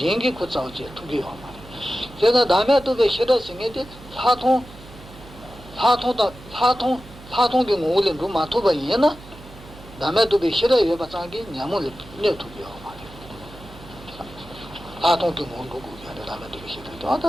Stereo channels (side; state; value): right; noise; hum, 19 dB below the sound